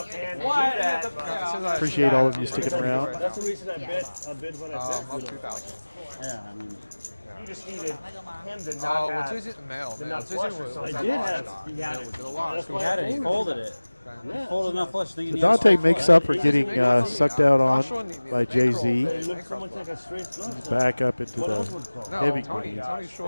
Appreciate all of you sticking around. That's the reason I bet when I bet. Up 2,000. Yeah, I mean. You just needed him to Oh, not well, have Tuesday the mail. the Man. nut Tuesday flush or was something. I did have. He had it. He had it. He folded it. He folded enough flush. So Dante makes up for getting sucked out on by Jay-Z. It looks so much like a straight flush. He's back up into the heavy green.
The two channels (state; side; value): inverted; both; correlation -1.00